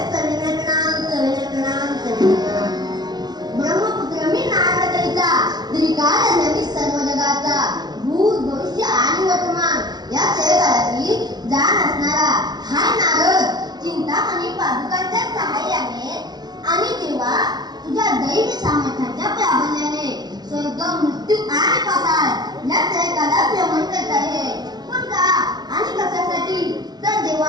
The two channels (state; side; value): late; left; 0.19 ms